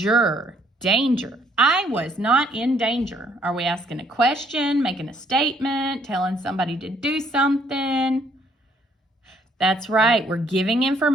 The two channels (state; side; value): normal; both; correlation 0.66